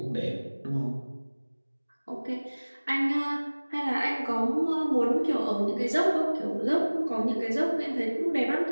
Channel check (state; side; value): inverted; both; correlation -1.00